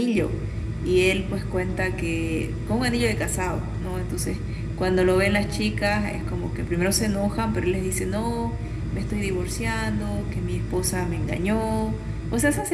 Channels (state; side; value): identical; both; correlation 1.00